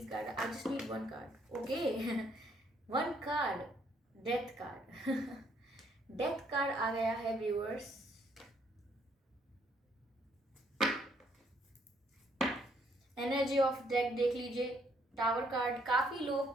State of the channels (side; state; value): both; normal; correlation 0.68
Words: guide, I just need 1 card. Okay, one card, death card. Death card आ गया है व्यूअर्स। एनर्जी ऑफ डेथ देख लीजिए। टावर कार्ड, काफी